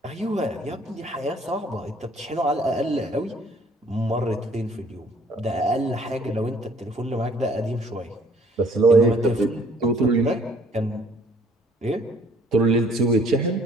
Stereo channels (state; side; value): normal; both; correlation 0.58